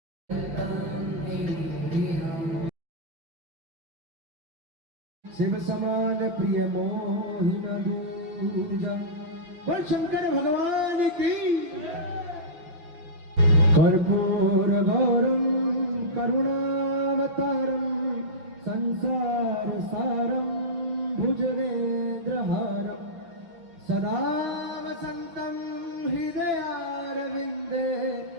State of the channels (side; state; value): left; late; 5.9 ms